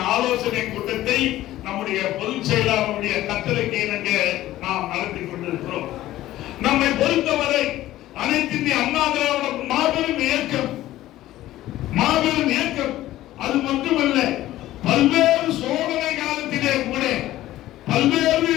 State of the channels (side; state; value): right; quieter; 14.9 dB